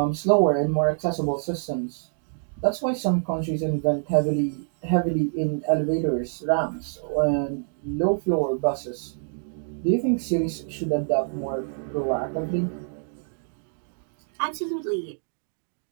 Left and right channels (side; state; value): left; silent; digital silence